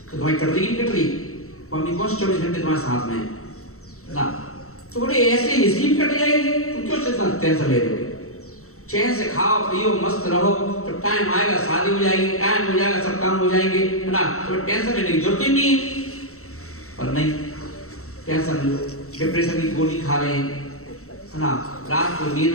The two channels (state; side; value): late; right; 0.64 ms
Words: तो तुम्हारी कट रही नहीं कट रही? मम्मी कौन 24 घंटे तुम्हारे साथ में है ना। तो बोले ऐसे इसी कट जाएगी, तुम क्यों टेंशन ले रहे हो? चैन से खाओ पियो मस्त रहो, तो टाइम आएगा शादी हो जाएगी, टाइम हो जाएगा सब काम हो जाएंगे, है ना। तो टेंशन लेने की जरूरत ही नहीं है। पर नहीं, टेंशन लो, डिप्रेशन की गोली खा रहे हैं, है ना। रात को